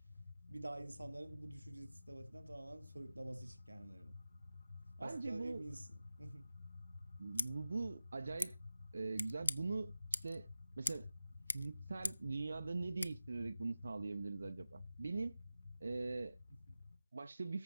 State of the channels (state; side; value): inverted; both; correlation -0.95